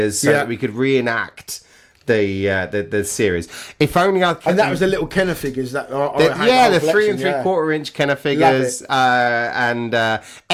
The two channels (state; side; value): identical; both; correlation 1.00